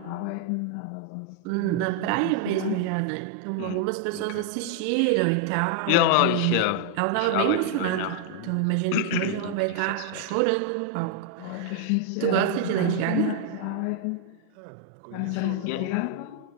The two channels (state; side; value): different; both; correlation 0.00